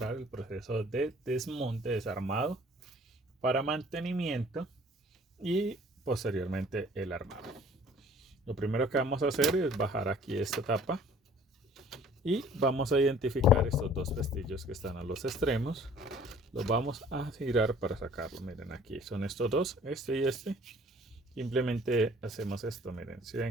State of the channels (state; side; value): normal; both; correlation 0.53